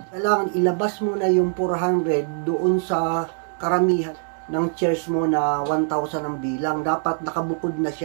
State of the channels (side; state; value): left; silent; digital silence